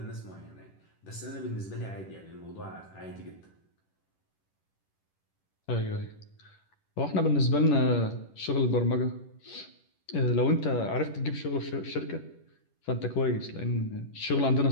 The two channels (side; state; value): right; late; 11 ms